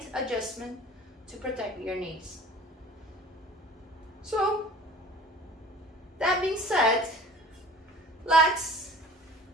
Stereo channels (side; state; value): both; normal; correlation 0.45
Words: adjustment to protect your knees. So, that being said, let's